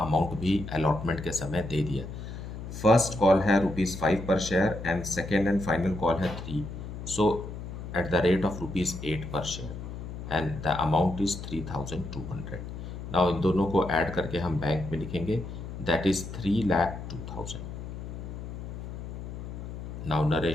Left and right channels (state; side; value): noise; left; hum, 9 dB below the sound